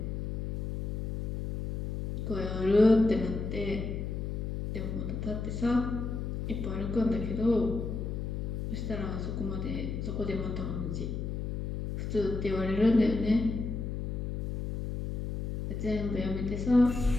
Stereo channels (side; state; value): left; noise; hum, 3 dB below the sound